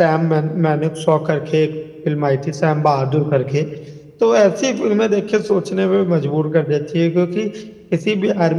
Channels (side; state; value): both; identical; correlation 1.00